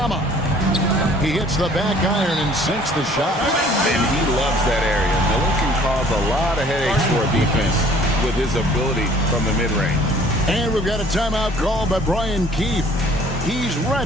He hits the back iron and sinks the shot. And he loves that area. Miller can cause a lot of headaches for a defense with his ability from the mid-range. And we've got a timeout call by Brian Keefe. He's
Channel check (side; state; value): both; normal; correlation 0.55